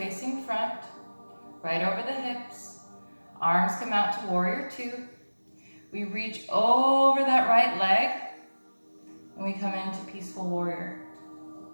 front, right over the hips. Arms come out to warrior two. We reach over that right leg and we come into peaceful warrior.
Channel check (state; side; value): inverted; both; correlation -1.00